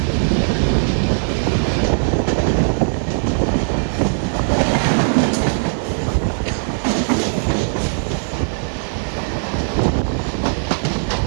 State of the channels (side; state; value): left; silent; 67 dB below the other